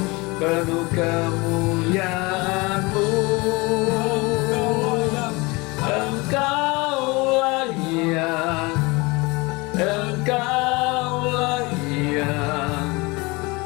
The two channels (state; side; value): quieter; right; 25.2 dB